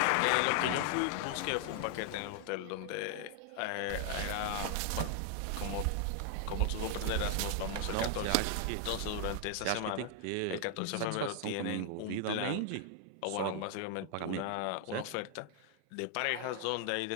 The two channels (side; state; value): both; different; correlation 0.00